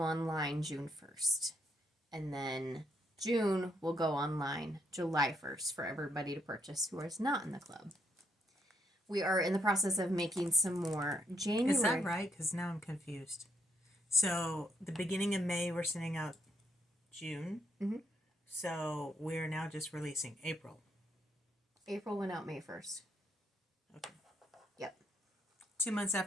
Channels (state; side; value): normal; both; correlation 0.75